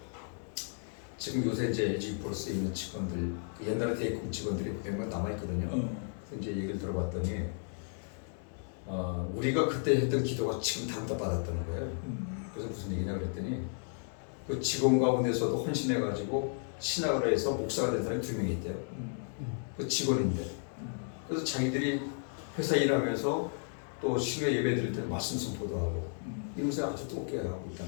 지금 요새 이제 LG 플러스에 있는 직원들 옛날에 대입금 직원들이 몇몇 남아 있거든요. 그래서 이제 얘기를 들어봤더니 우리가 그때 했던 기도가 지금 다 받았다는 거예요. 그래서 무슨 얘기냐 그랬더니 그 직원 가운데서도 헌신해가지고 신학을 해서 목사가 된 사람이 2명이 있대요. 그 직원인데 그래서 자기들이 회사 일하면서 또 신뢰 예배 드릴 때 말씀 선포도 하고 이것을 아주 뜨겁게 하고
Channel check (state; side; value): silent; right; 55 dB below the other